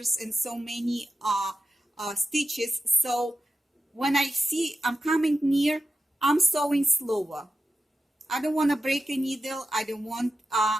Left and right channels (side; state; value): both; normal; correlation 0.91